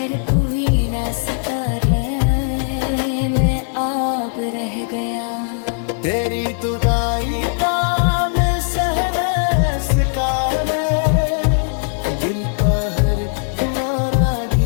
कोई रास्ता आब रह गया। तेरी जुदाई का मैं सहने सिकारे, दिल का हर किनारा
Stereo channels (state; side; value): silent; right; digital silence